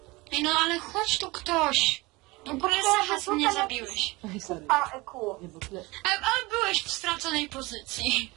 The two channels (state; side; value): quieter; left; 23.0 dB